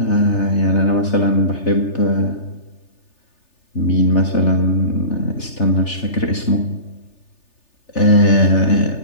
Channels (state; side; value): late; right; 3.4 ms